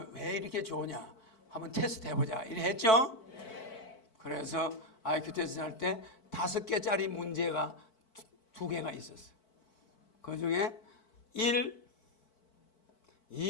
왜 이렇게 좋으냐 한번 테스트 해보자 이래 했죠? 그래서 IQ 테스트 할 때 5개짜리 문제가 2개가 있었어. 그 중에 1,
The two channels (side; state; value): right; late; 4.5 ms